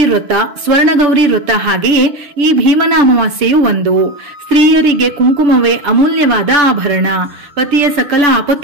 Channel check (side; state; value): left; late; 6.9 ms